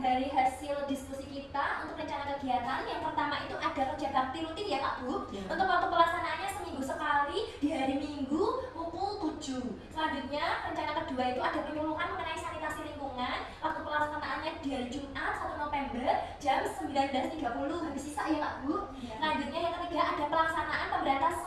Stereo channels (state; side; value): identical; both; correlation 1.00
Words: dari hasil diskusi kita untuk rencana kegiatan. Yang pertama itu ada kerja bakti rutin ya Pak Bu. Untuk waktu pelaksanaannya seminggu sekali di hari Minggu pukul 7. Selanjutnya rencana kedua itu ada penyuluhan mengenai sanitasi lingkungan. Waktu pelaksanaannya di hari Jumat 1 November jam 19.30. Habis sisa ya Pak Bu. Selanjutnya yang ketiga ada pelaksanaan pemberantasan